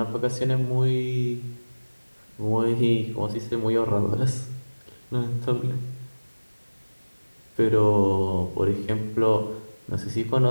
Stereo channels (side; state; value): both; inverted; correlation -1.00